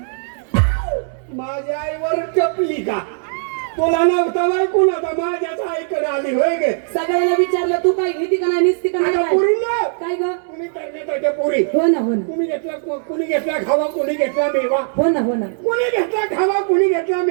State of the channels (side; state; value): left; silent; digital silence